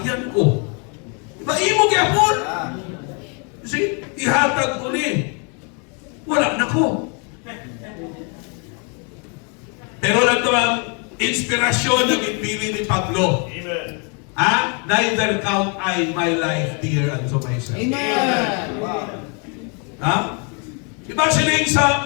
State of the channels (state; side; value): quieter; right; 36.4 dB